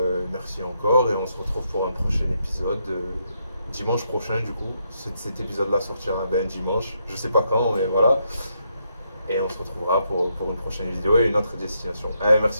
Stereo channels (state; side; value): inverted; both; correlation -0.79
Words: merci encore et on se retrouve pour un prochain épisode. Dimanche prochain du coup. Cet épisode là sortira dimanche. Je sais pas quand mais voilà. Et on se retrouvera pour une prochaine vidéo et une autre destination.